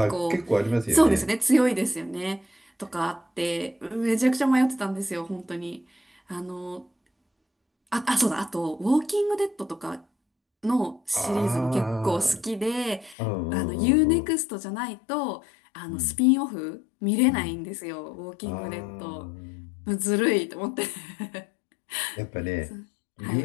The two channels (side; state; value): right; drops out; at 13.2 s